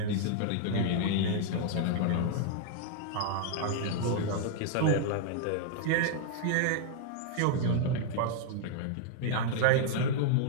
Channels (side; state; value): both; different; correlation -0.01